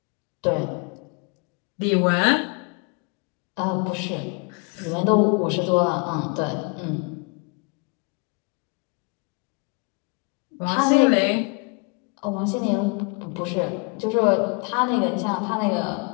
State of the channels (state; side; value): quieter; right; 33.3 dB